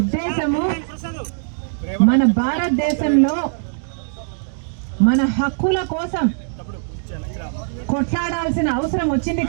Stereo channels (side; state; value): left; silent; digital silence